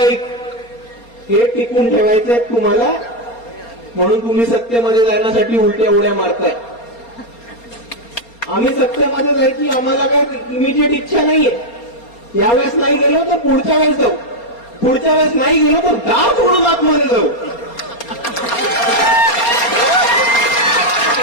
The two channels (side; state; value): right; late; 4.3 ms